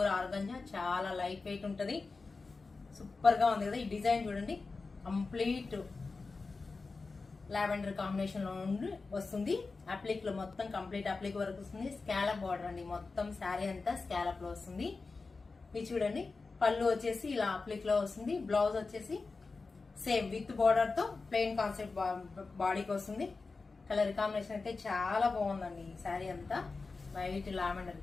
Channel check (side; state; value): right; quieter; 4.0 dB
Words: ఆర్గంజా, చాలా లైట్ వెయిట్ ఉంటది. సూపర్ గా ఉంది కదా. ఈ డిజైన్ చూడండి, కంప్లీట్ లావెండర్ కాంబినేషన్ లో నుండి వస్తుంది. అప్లిక్ లో మొత్తం కంప్లీట్ అప్లిక్ వర్క్ వస్తుంది. స్కాలప్ బార్డర్ అండి, మొత్తం శారీ అంతా స్కాలప్ లో వస్తుంది. ఇది చూడండి, పళ్ళు వచ్చేసి ఇలా అప్లిక్ లో వస్తుంది. బ్లౌజ్ వచ్చేసి సేమ్ విత్ బార్డర్ తో ప్లెయిన్ కాన్సెప్ట్ బాడీకి వస్తుంది. కలర్ కాంబినేషన్ అయితే చాలా బాగుందండి. ఈ శారీ అంతా వైట్ లావెండర్